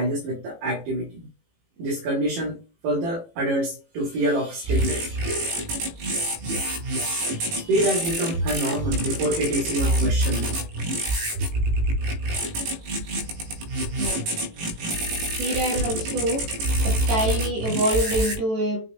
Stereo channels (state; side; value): late; left; 18 ms